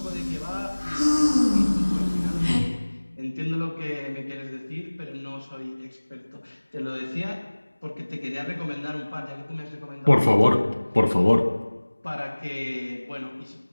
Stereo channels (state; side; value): inverted; both; correlation -1.00